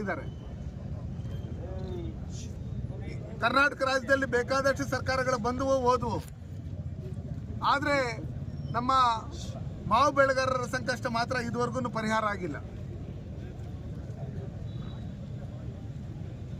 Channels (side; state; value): both; identical; correlation 1.00